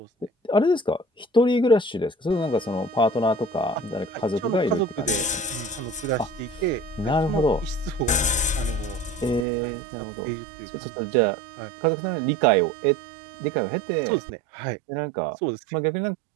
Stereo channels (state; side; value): drops out; left; at 9.5 s